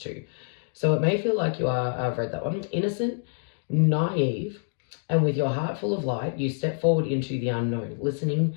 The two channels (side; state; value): right; silent; digital silence